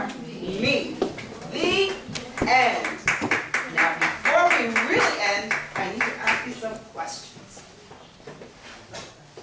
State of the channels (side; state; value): both; identical; correlation 1.00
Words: me. The end. Now, before we really end, I need to ask you some questions.